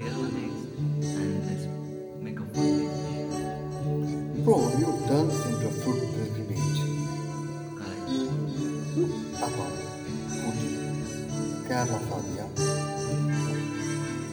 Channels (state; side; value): identical; both; correlation 1.00